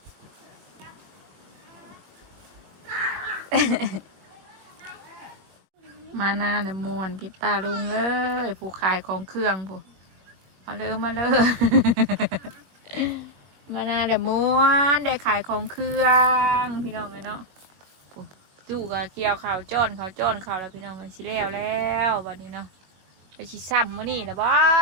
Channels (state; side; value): late; left; 21 ms